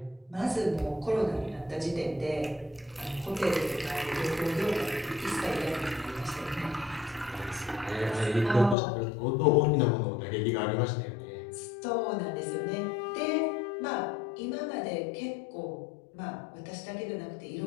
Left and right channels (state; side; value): drops out; right; at 8.8 s